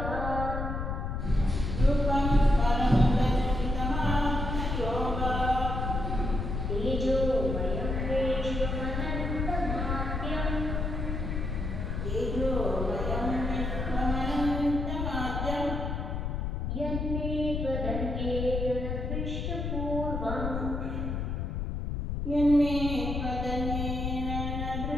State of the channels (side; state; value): left; noise; rumble, 2 dB below the sound